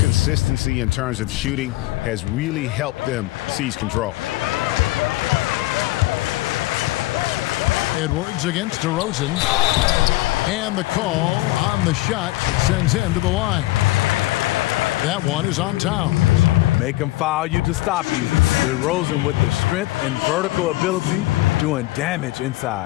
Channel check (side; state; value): right; quieter; 18.7 dB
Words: in terms of shooting has really helped them seize control. Edwards against DeRozan. And the call on the shot that sends him to the line. That one is on Towns. Make him foul you to stop you. DeRozan with the strength and vertical ability doing damage